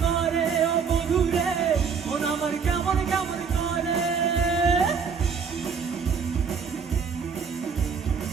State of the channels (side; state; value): left; quieter; 6.1 dB